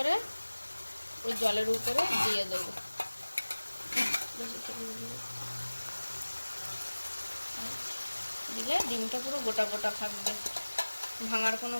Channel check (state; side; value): inverted; both; correlation -1.00